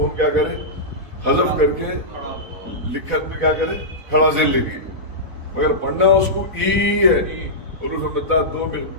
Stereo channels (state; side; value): late; left; 4.1 ms